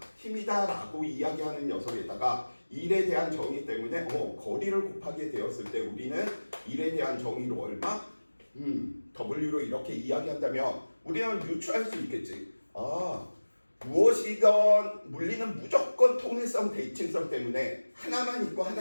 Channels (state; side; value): inverted; both; correlation -1.00